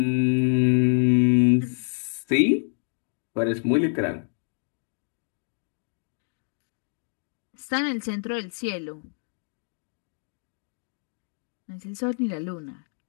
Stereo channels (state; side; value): silent; right; 60 dB below the other